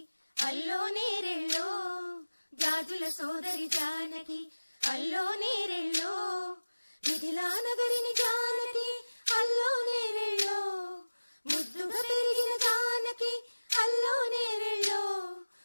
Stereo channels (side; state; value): both; inverted; correlation -1.00